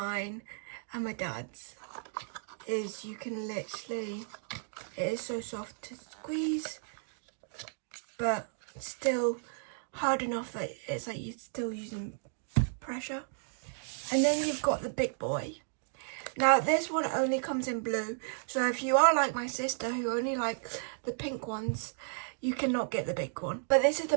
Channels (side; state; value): left; silent; digital silence